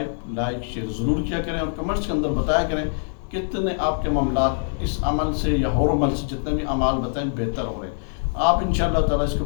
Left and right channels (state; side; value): silent; right; digital silence